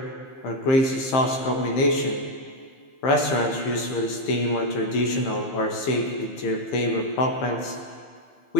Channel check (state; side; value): late; right; 15 ms